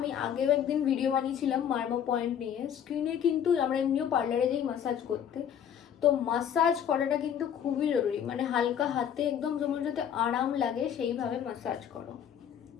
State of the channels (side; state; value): right; quieter; 8.9 dB